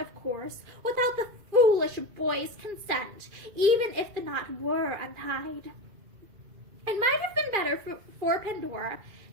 of course, without the foolish boy's consent, even if the knot were untied." It might have been better for Pandora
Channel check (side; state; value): left; late; 2.4 ms